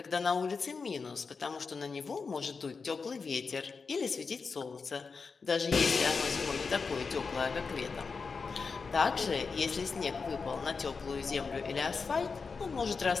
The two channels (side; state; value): right; quieter; 4.9 dB